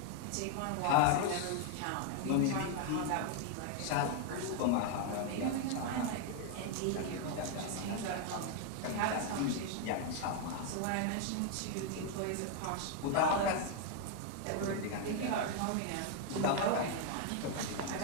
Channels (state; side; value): different; both; correlation 0.00